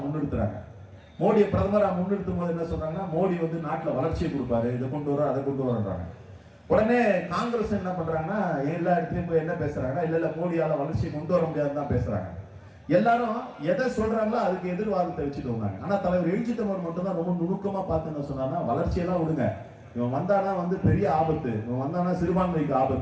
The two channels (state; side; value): identical; both; correlation 1.00